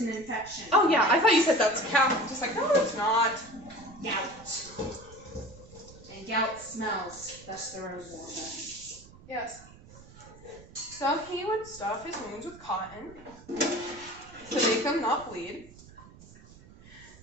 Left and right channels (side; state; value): right; noise; rumble, 21 dB below the sound